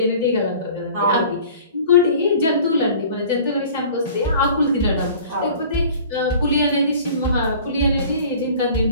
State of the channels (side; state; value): both; inverted; correlation -0.46